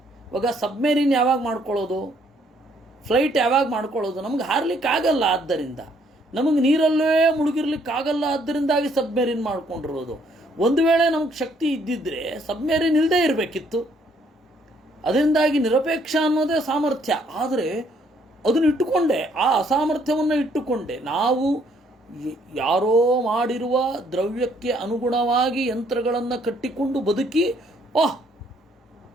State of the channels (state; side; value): normal; both; correlation 0.67